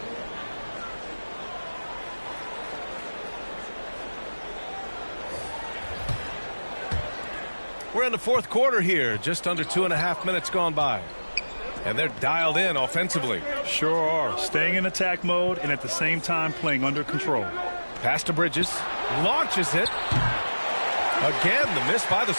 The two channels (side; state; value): both; inverted; correlation -1.00